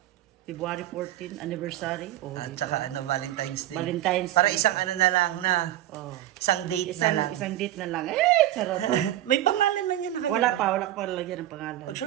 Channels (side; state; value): left; quieter; 13.7 dB